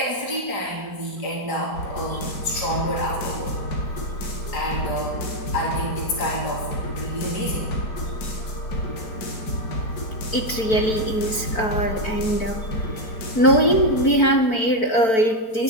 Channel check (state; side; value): late; right; 4.5 ms